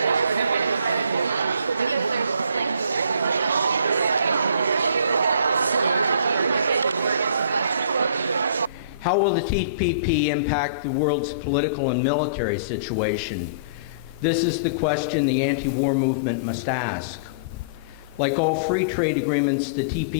How will the TPP impact the world's political and military situation? This is the question the anti-war movement must ask. Like all free trade agreements, the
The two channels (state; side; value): inverted; both; correlation -0.47